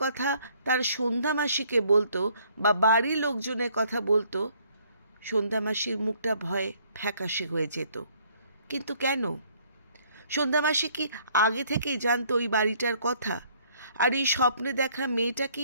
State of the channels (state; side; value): inverted; both; correlation -0.62